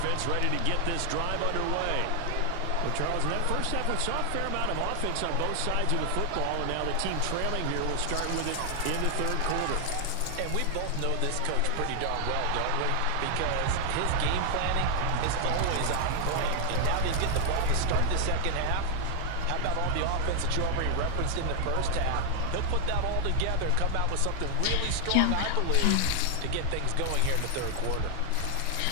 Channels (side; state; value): both; different; correlation 0.00